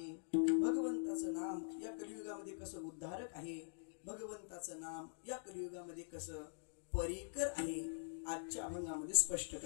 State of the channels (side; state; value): right; silent; digital silence